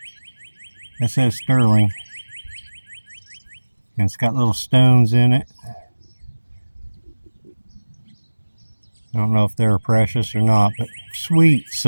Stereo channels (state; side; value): inverted; both; correlation -1.00